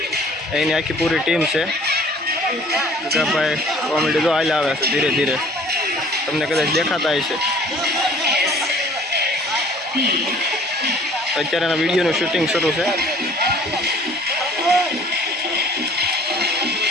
एनी आखी पूरी टीम है। गगाभाई कॉमेडी जो आले आवे छे धीरे धीरे तमने कदाच देखाता है। अत्यारे विडियो शूटिंग शुरू है।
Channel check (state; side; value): normal; both; correlation 0.52